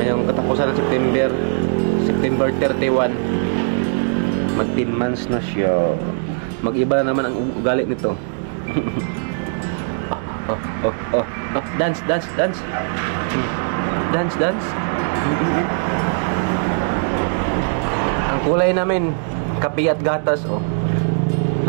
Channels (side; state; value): left; silent; 66 dB below the other